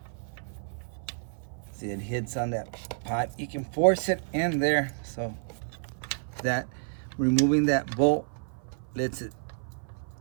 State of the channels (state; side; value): silent; left; 55 dB below the other